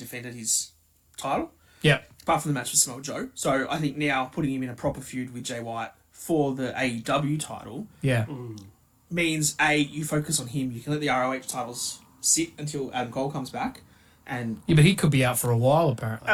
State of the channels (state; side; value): identical; both; correlation 1.00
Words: his title, Yeah. apart from the match with Samoa Joe. So I think now putting him in a proper feud with Jay White for the AEW title Yeah. means you focus on him. You can let the ROH titles sit until Adam Cole comes back, and Yeah, but he could be out for a while, apparently.